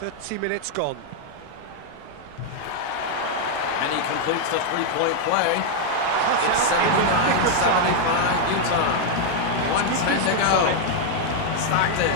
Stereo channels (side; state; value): both; different; correlation 0.00